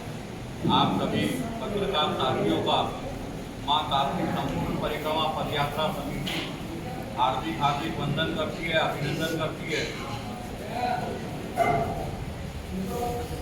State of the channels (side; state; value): both; identical; correlation 1.00